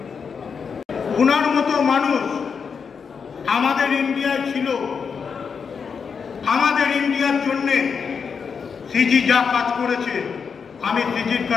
উনার মতো মানুষ আমাদের ইন্ডিয়ায় ছিল। আমাদের ইন্ডিয়ার জন্যে সিজি যা কাজ করেছে, আমি সিজির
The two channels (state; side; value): quieter; right; 6.0 dB